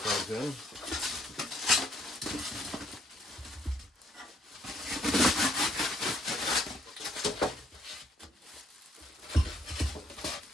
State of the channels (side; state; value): both; normal; correlation 0.67